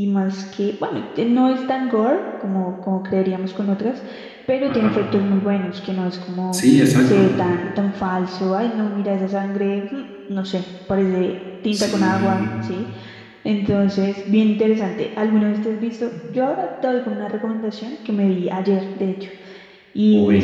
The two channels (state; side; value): identical; both; correlation 1.00